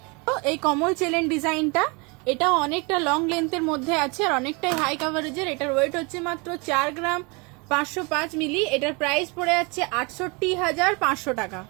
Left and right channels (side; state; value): left; quieter; 29.6 dB